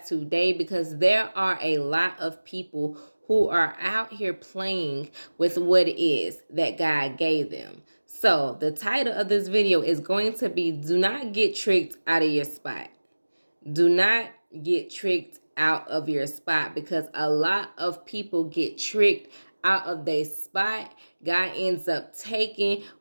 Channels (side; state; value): both; inverted; correlation -1.00